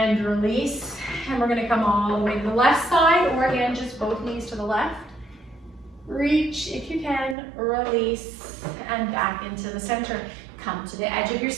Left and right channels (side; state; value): left; drops out; at 7.4 s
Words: release. And we're going to come all the way to the left side, or again, just both knees to the left. Reach if you can, release, and back into the center. Come to the edge of your